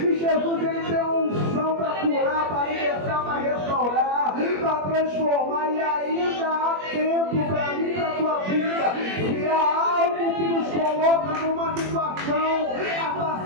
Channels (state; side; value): late; left; 21 ms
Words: Jesus, Ele tem uma unção para curar, para libertar, para restaurar, para transformar. E ainda há tempo para mim, para a tua vida. Se há algo que nos coloca numa situação